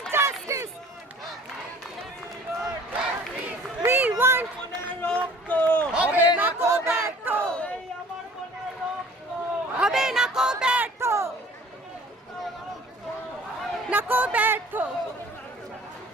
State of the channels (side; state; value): both; normal; correlation 0.49